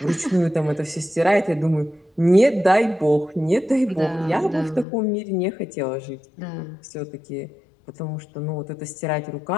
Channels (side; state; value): right; drops out; at 4.9 s